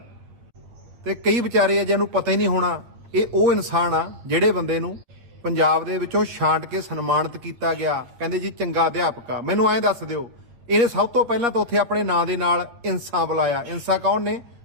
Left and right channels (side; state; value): left; late; 8.7 ms